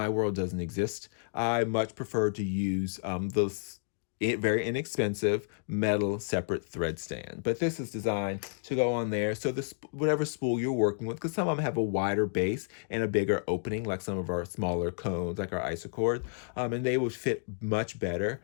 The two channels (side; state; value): right; silent; digital silence